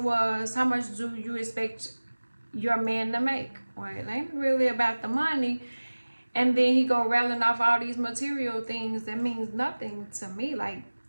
was, how much do you expect your man to make? Well, it ain't really about the money. And then he go rattling off all these material things that means nothing to me. Like,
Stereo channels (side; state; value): both; inverted; correlation -1.00